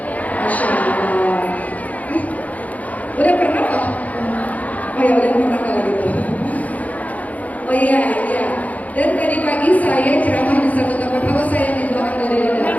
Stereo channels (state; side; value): late; right; 0.074 ms